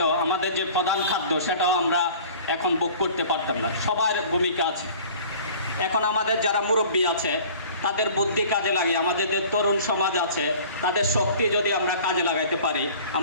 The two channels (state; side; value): inverted; both; correlation -0.46